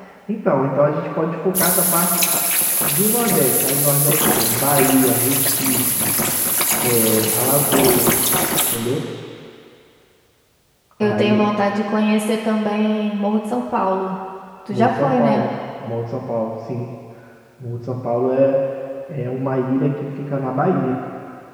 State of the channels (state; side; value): identical; both; correlation 1.00